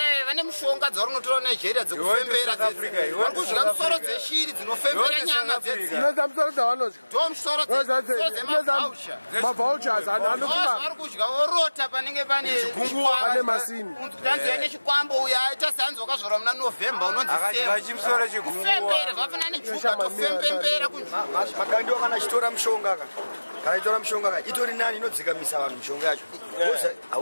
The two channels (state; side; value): inverted; both; correlation -1.00